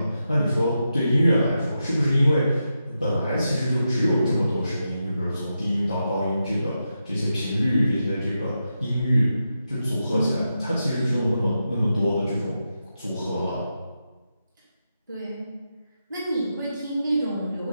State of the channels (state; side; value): inverted; both; correlation -0.87